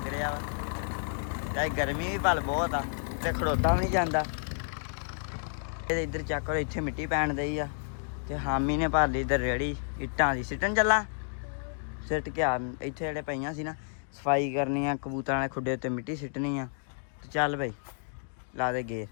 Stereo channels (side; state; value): right; silent; digital silence